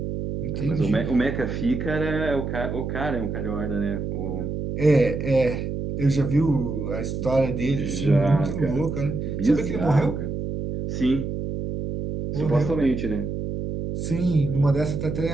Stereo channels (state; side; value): noise; right; hum, 4 dB below the sound